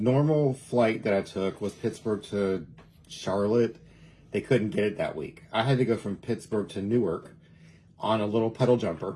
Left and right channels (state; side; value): identical; both; correlation 1.00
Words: flight that I took was Pittsburgh to Charlotte. They couldn't get it that week. I had to go from Pittsburgh to Newark on a little pedal